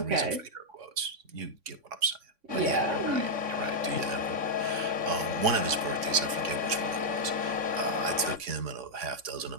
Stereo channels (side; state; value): left; late; 3.6 ms